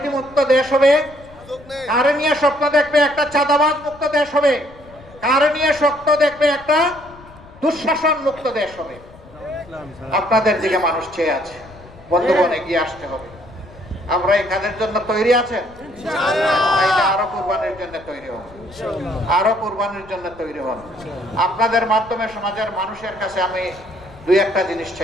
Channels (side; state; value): left; noise; rumble, 22 dB below the sound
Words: মুক্ত দেশ হবে? কারে নিয়ে স্বপ্ন দেখবে একটা চাঁদাবাজ মুক্ত দেশ হবে? কারে নিয়ে স্বপ্ন দেখবে একটা দুঃশাসন মুক্ত দেশ হবে? আপনাদের দিকে মানুষ চেয়ে আছে। বন্ধুগণ, এগিয়ে আসতে হবে। আমরা এই কাজের জন্য তৈরি আছেন? আরো কুরবানির জন্য তৈরি হন, আরো কুরবানির জন্য তৈরি হন। আপনাদের মাধ্যমে সমাজের মানুষের কাছে আমি দুই একটা জিনিস